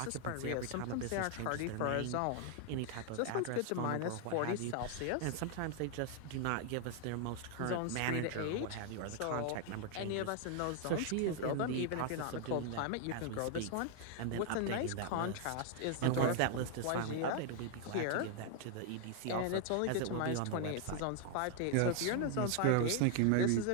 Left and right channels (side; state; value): both; different; correlation 0.00